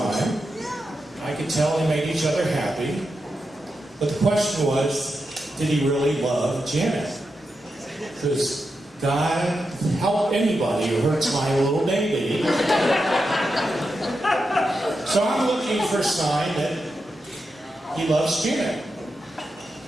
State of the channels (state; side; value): normal; both; correlation 0.88